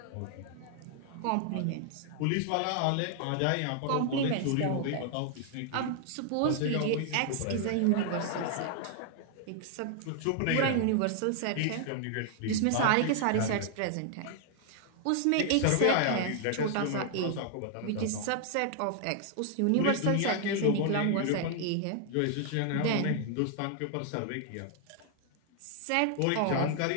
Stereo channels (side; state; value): both; different; correlation 0.00